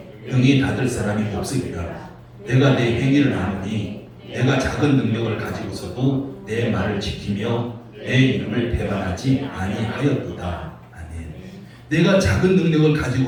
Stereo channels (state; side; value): identical; both; correlation 1.00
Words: 능히 닫을 사람이 없으리라. 내가 내 행위를 아노니 내가 작은 능력을 가지고서도 내 말을 지키며 내 이름을 배반하지 아니하였도다. 아멘. 내가 작은 능력을